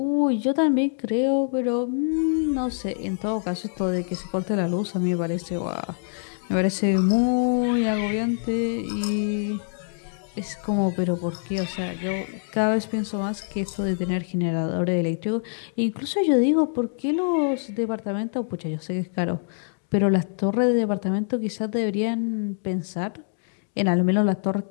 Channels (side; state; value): right; silent; digital silence